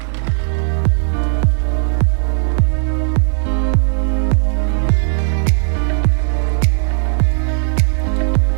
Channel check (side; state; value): left; silent; 60 dB below the other